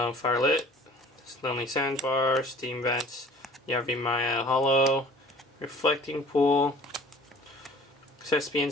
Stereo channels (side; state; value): both; normal; correlation 0.48